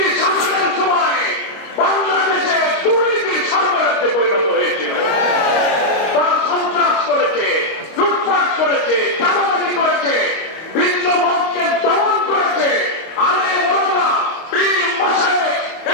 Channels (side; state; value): right; late; 25 ms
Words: শাসনের সময় বাংলাদেশে দুর্নীতির সরবরাহে পরিণত হয়েছিল। তারা সন্ত্রাস করেছে, লুটপাট করেছে, চাঁদাবাজি করেছে, ভিন্ন মতকে দমন করেছে। আলেম ওলামা, পীর মাশায়েখ,